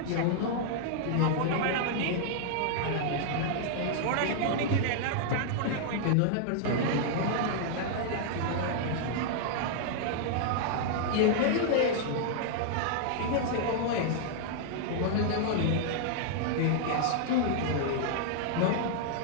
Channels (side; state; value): both; different; correlation -0.01